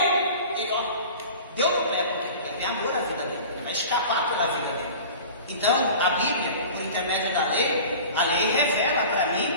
ele deu no pé, porque ele tem amor à vida dele, ele vai escapar pela vida dele. Então, a Bíblia, por intermédio da lei, a lei revela para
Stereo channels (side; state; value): both; inverted; correlation -0.39